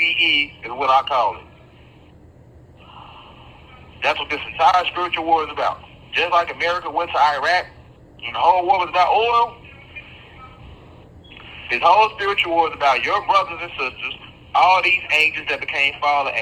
is what I call it. That's what this entire spiritual war is about. Just like America went to Iraq and the whole war was about oil, this whole spiritual war is about your brothers and sisters, all these angels that became fallen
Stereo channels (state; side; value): identical; both; correlation 1.00